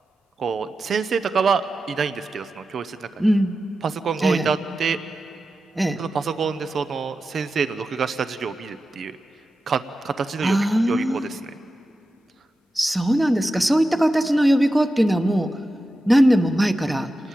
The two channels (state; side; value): normal; both; correlation 0.92